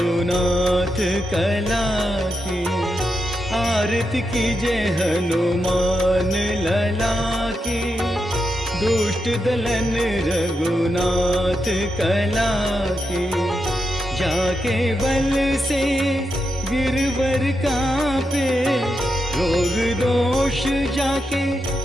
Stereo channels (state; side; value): normal; both; correlation 0.86